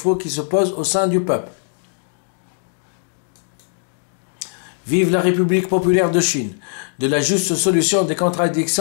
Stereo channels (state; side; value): silent; right; digital silence